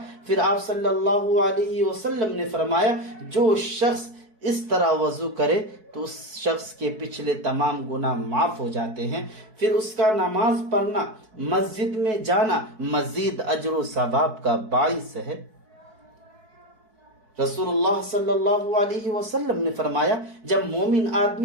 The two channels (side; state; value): left; late; 4.6 ms